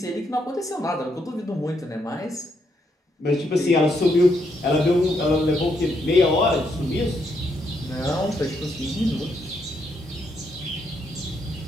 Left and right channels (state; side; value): normal; both; correlation 0.77